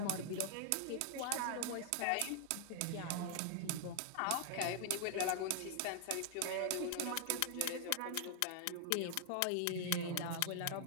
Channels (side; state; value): both; different; correlation 0.00